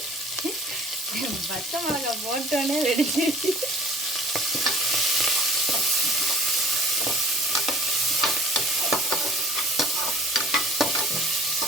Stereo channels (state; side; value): normal; both; correlation 0.50